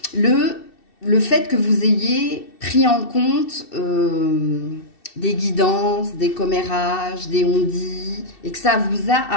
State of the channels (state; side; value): late; right; 2.7 ms